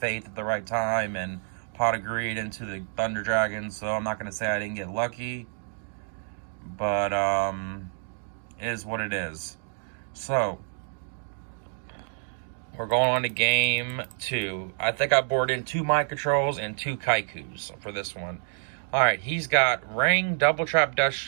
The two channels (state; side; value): silent; left; digital silence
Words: at the right time and pot of greed into the Thunder Dragon, so I'm not going to say I didn't get lucky, but it is what it is. So, we're going on to game 2. I think I bored in 2 Mind Controls and 2 Kaikus for this one. Alright, he's got Ring, Double Trap